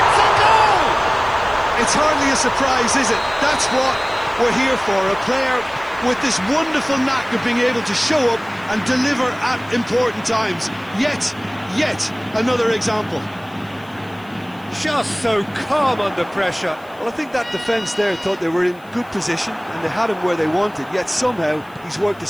a goal! It's hardly a surprise, is it? That's what we're here for, a player with this wonderful knack of being able to show up and deliver at important times. Yet another example. Just so calm under pressure. Well, I think that defence there thought they were in good position and they had him where they wanted, yet somehow he's worked a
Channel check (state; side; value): noise; left; hiss, 29 dB below the sound